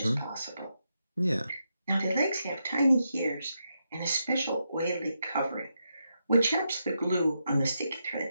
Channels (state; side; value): inverted; both; correlation -0.84